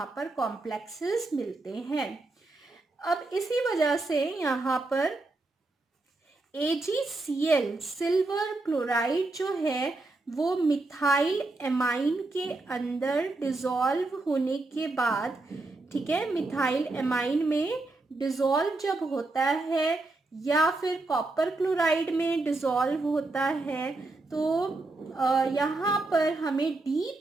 पर कॉम्प्लेक्सेस मिलते हैं। अब इसी वजह से यहाँ पर AgCl सिल्वर क्लोराइड जो है वो मिथाइल एमाइन के अंदर डिसॉल्व होने के बाद, ठीक है, मिथाइल एमाइन में डिसॉल्व जब होता है या फिर कॉपर क्लोराइड में डिसॉल्व होता है, तो यहाँ पर हमें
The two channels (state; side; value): quieter; left; 3.1 dB